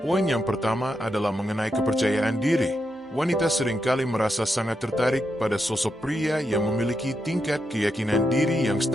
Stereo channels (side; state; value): both; normal; correlation 0.84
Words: Poin yang pertama adalah mengenai kepercayaan diri. Wanita seringkali merasa sangat tertarik pada sosok pria yang memiliki tingkat keyakinan diri yang